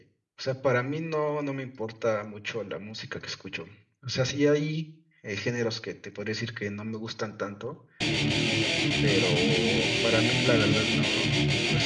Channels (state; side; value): identical; both; correlation 1.00